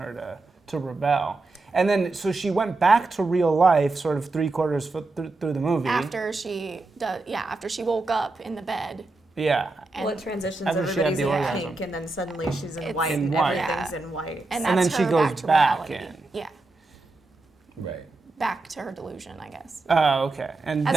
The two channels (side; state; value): left; quieter; 3.3 dB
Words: to rebel. And then, so she went back to real life sort of 3/4 through the movie. After she woke up in the bed. Yeah. Well, it transitions, everybody's in pink, and then suddenly she's in white, and everything's in white. And then she goes back in. Yeah. Right. Back to her delusion, I guess. Oh, okay. And